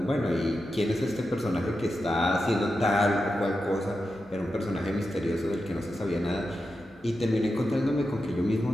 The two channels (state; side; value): normal; both; correlation 0.89